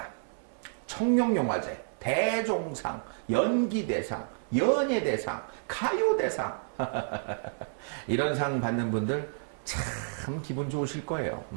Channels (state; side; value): silent; left; 58 dB below the other